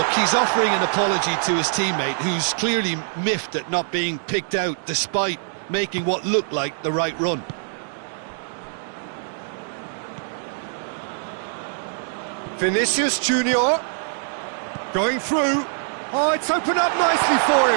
he's offering an apology to his teammate, who's clearly miffed at not being picked out despite making what looked like the right run. Vinicius Junior going through. Oh, it's opened up nicely for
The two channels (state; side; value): silent; left; digital silence